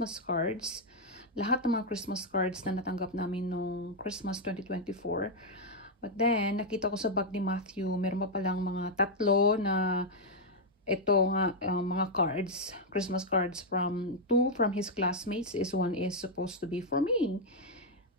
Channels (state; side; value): normal; both; correlation -0.01